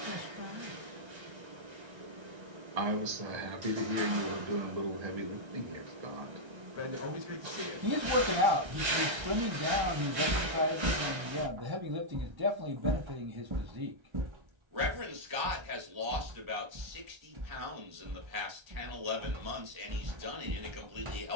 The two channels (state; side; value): late; left; 1.3 ms